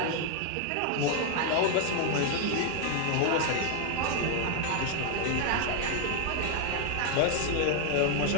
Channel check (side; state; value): both; different; correlation 0.01